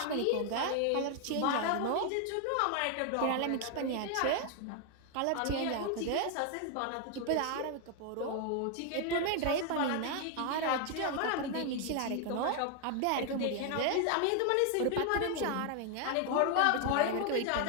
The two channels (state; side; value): different; both; correlation 0.00